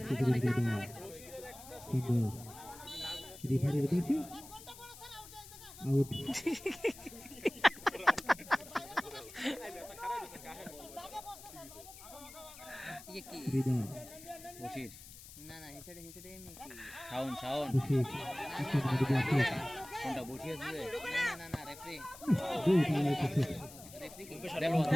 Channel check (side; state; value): left; noise; hiss, 16 dB below the sound